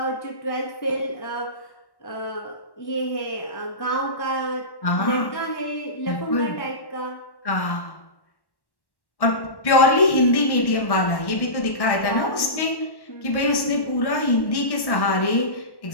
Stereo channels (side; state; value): right; late; 1.1 ms